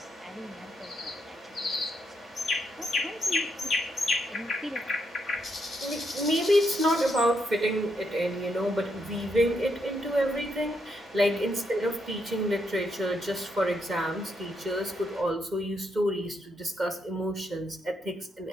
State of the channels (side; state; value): both; normal; correlation 0.78